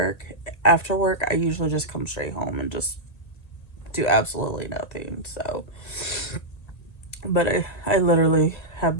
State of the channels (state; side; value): late; right; 1.8 ms